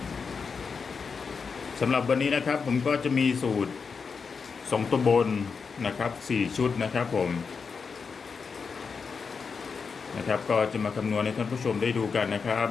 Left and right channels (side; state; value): right; quieter; 5.4 dB